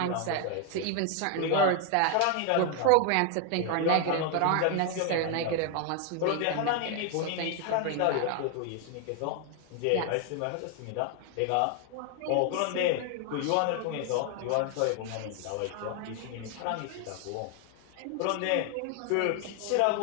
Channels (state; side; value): different; both; correlation 0.00